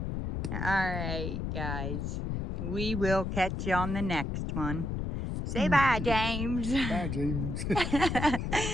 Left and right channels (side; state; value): left; noise; rumble, 2 dB below the sound